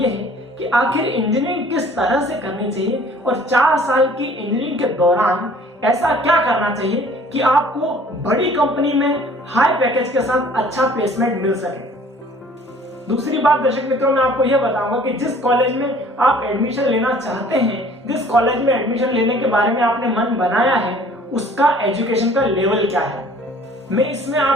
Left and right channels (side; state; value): both; normal; correlation 0.52